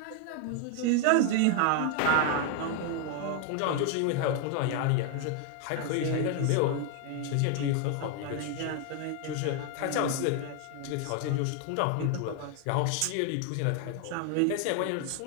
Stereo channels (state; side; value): different; both; correlation 0.01